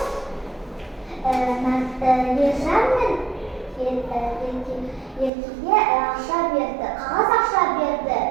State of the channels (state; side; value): drops out; left; at 5.3 s